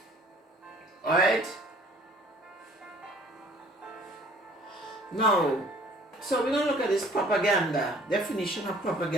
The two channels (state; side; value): normal; both; correlation 0.54